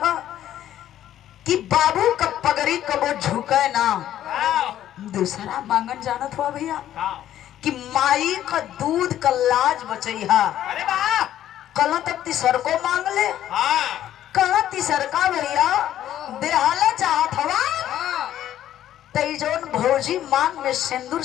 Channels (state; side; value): quieter; right; 11.9 dB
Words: कि बाबू का पगड़ी कबो झुके ना। दूसरा मांगन जानत हुआ भैया कि माई का दूध का लाज बचैहा। कल तक तीसर को मांग ले, कल तीसर का भैया देहाला चाहत हवा तई जोन भौजी मांग में सिंदूर